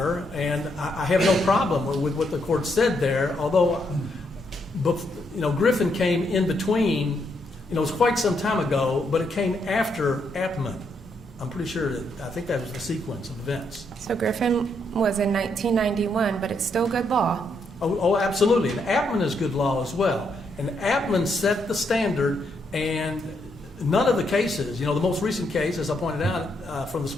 and I have no problem with what the court said there, although, Griffin came in between. It was quite some time ago, but it came after Apperman. I'm pretty sure I think that was the sequence of events. So Griffin was in 1991, but it's still good law. Oh, absolutely. And Apperman is good law as well. And Apperman set the standard, and none of the cases, the most recent case, as I pointed out from the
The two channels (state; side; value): normal; both; correlation 0.77